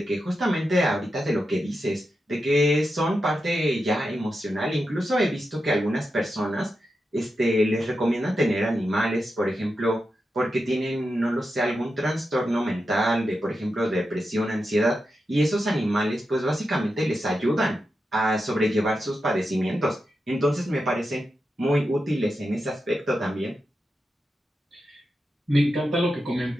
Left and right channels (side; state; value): both; normal; correlation 0.89